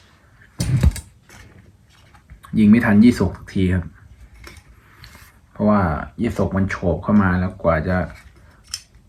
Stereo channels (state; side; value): identical; both; correlation 1.00